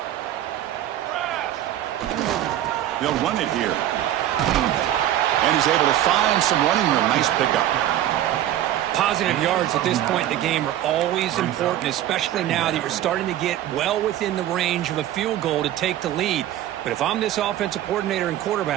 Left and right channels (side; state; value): left; quieter; 12.5 dB